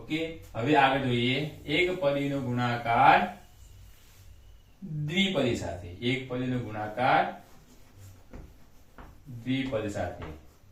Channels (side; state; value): both; identical; correlation 1.00